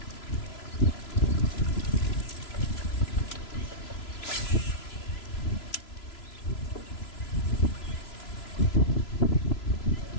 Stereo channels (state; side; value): late; right; 3.0 ms